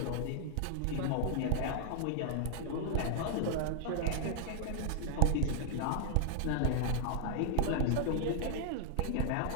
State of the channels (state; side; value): different; both; correlation 0.00